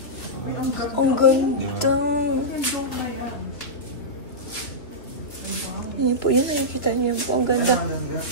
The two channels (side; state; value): right; late; 2.6 ms